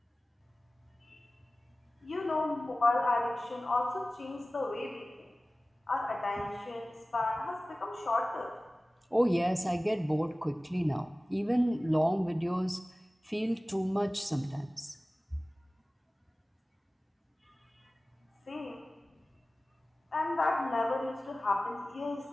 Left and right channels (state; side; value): normal; both; correlation 0.97